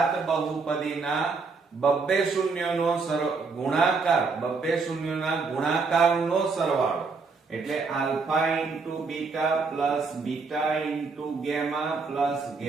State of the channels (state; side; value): quieter; left; 4.5 dB